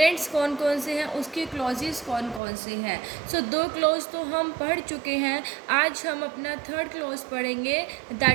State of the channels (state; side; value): drops out; left; at 2.4 s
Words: कौन कौन से हैं, उसके क्लॉजेस कौन कौन से हैं। सो 2 क्लॉज तो हम पढ़ चुके हैं। आज हम अपना थर्ड क्लॉज पढ़ेंगे,